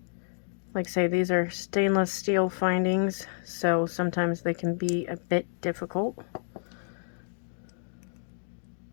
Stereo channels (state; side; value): silent; right; digital silence